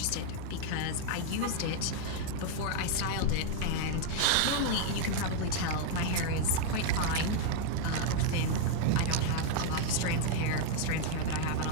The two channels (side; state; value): both; different; correlation 0.00